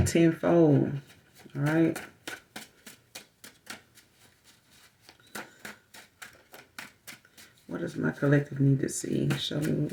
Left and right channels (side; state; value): both; identical; correlation 1.00